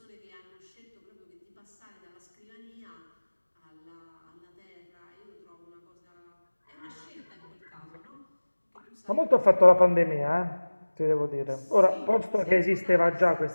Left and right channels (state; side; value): inverted; both; correlation -1.00